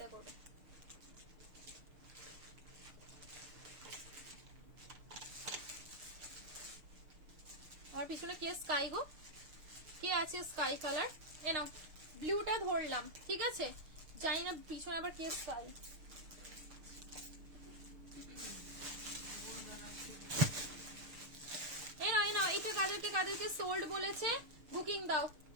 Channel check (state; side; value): late; left; 6.7 ms